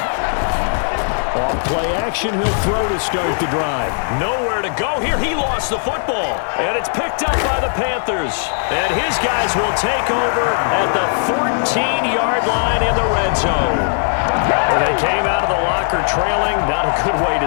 Off play action, he'll throw to start the drive. Nowhere to go here. He lost the football, and it's picked up by the Panthers. And his guys will take over at the 14-yard line in the red zone. And they came out of the locker trailing. Not a good way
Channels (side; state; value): right; silent; 66 dB below the other